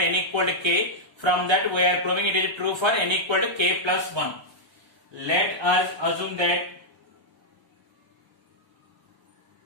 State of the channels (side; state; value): left; late; 1.0 ms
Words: equal to k. From that we are proving it is true for n equal to k plus 1. Let us assume